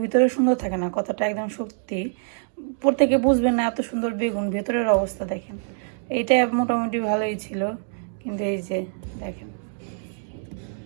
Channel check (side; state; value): left; silent; digital silence